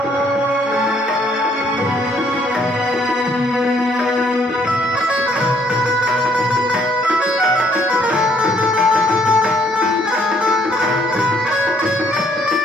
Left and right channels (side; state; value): both; normal; correlation 0.65